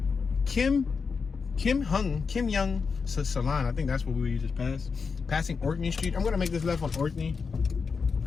Kim Young Salon. I think that's what we just passed. Passing Orkney Street. I'm gonna make this left on Orkney.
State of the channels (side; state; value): right; quieter; 5.3 dB